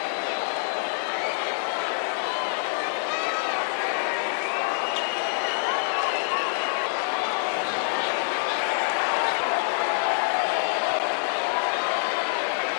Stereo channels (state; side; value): silent; right; digital silence